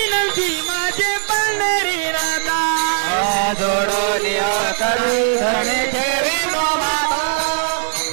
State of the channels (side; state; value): left; silent; 63 dB below the other